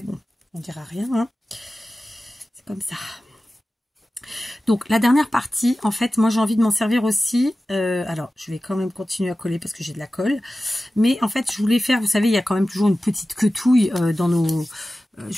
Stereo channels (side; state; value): both; normal; correlation 0.95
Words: bon, on ne dira rien. Hein. C'est comme ça. Donc, la dernière partie, en fait, moi, j'ai envie de m'en servir aussi. Alors, je vais quand même continuer à coller parce que j'ai de la colle. Mais en fait, je voulais faire, vous savez, il y a quand même toujours une petite quetouille dans nos...